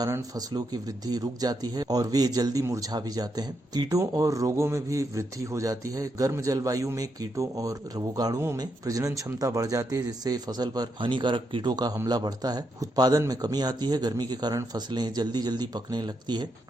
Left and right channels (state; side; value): normal; both; correlation 0.81